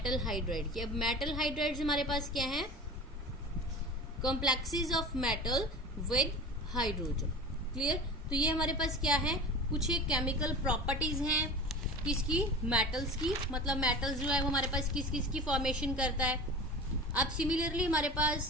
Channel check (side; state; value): both; normal; correlation 0.34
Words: हाइड्राइड की। अब मेटल हाइड्राइड हमारे पास क्या है, complexes of metal with hydrogen. Clear. तो ये हमारे पास क्या है, कुछ एक केमिकल प्रॉपर्टीज हैं किसकी, मेटल्स की। मतलब मेटल्स जो है वो हमारे पास किस किस की फॉर्मेशन करता है। अब सिमिलरली हमारे